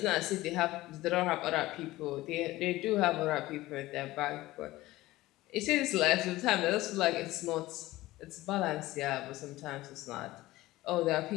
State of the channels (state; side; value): quieter; right; 17.6 dB